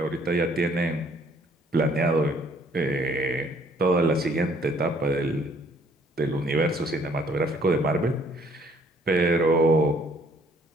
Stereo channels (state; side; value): normal; both; correlation 0.62